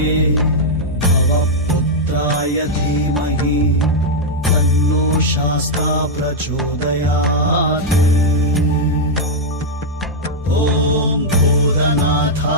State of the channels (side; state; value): both; normal; correlation -0.03